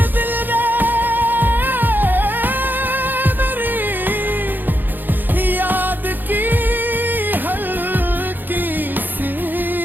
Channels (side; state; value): left; late; 0.090 ms